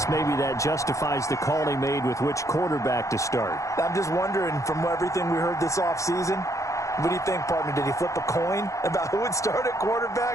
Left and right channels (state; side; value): late; right; 0.15 ms